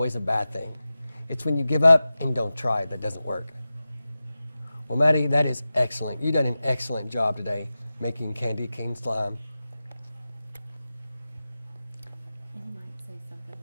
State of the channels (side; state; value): both; inverted; correlation -0.95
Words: a bad thing. It's when you give up and don't try that doesn't work. Well, Maddie, that is excellent. You've done an excellent job today making candy cane slime. And you might say something